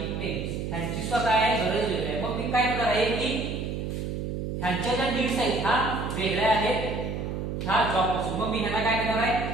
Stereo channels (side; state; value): right; noise; hum, 4 dB below the sound